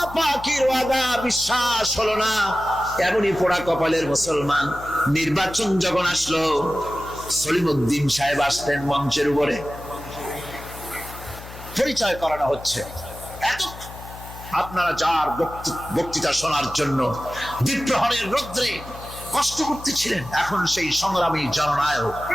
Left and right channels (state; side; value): noise; left; hum, 14 dB below the sound